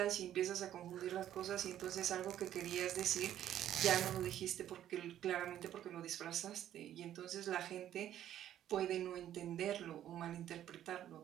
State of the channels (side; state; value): left; quieter; 11.5 dB